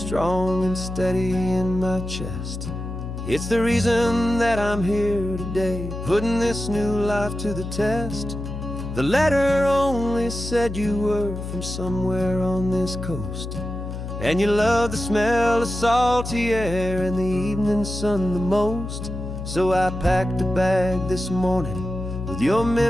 and steady in my chest. It's the reason that I'm here today, putting this new life to the test. The letter only said you were from somewhere on this coast, and you love the smell of salty air and the evening sun the most. So I packed a bag this morning with your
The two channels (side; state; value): left; noise; hum, 7 dB below the sound